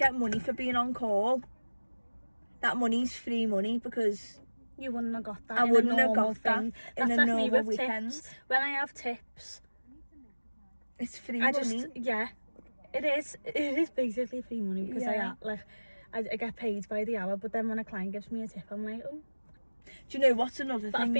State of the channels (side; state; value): both; inverted; correlation -1.00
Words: money for being on call, that money's free money because You wouldn't have got that. I in wouldn't a have normal got that thing. in That's a like me normal with weekend. tips. When I have tips, It's free I money. just it is basically free money because Yeah. I get paid by the hour. But then when a client gives me a tip, I'm like, oh. Do you know what's another But I've thing